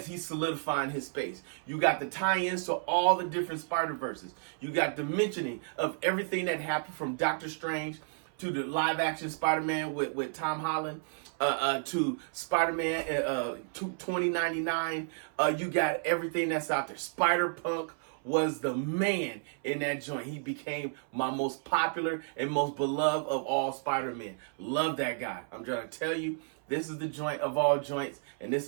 he's solidifying his space. You got the tie-ins to all the different Spider-Verses. You got the mentioning of everything that happened from Doctor Strange to the live-action Spider-Man with Tom Holland, to Spider-Man 2099. You got everything that's out there. Spider-Punk was the man in that joint. He became my most popular and most beloved of all Spider-Men. Love that guy. I'm trying to tell you, this is the joint of all joints, and this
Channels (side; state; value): left; silent; 57 dB below the other